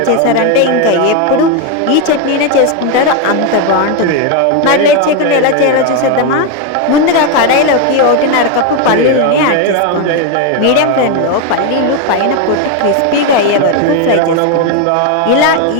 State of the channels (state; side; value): different; both; correlation 0.02